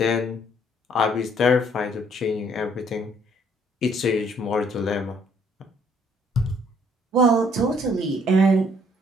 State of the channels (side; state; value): both; normal; correlation 0.64